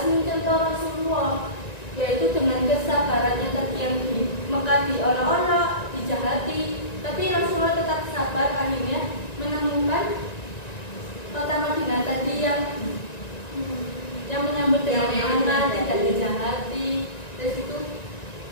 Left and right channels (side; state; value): right; late; 1.9 ms